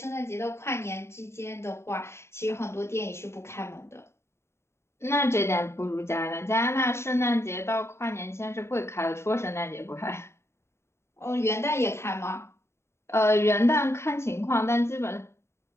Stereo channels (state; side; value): late; right; 0.13 ms